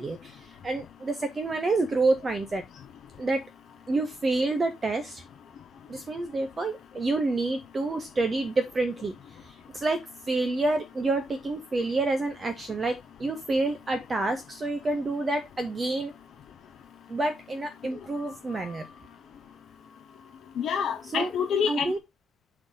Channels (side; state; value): both; normal; correlation 0.83